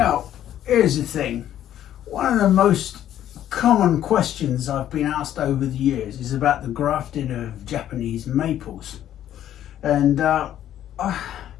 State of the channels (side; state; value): right; quieter; 11.5 dB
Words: here's the thing. One of the most common questions I've been asked over the years is about the grafting of Japanese maples. And I'm